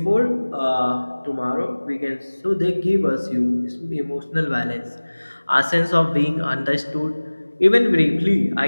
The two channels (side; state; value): both; inverted; correlation -1.00